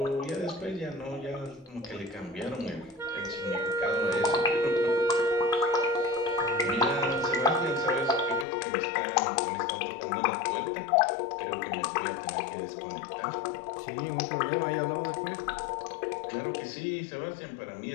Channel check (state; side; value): drops out; right; at 8.5 s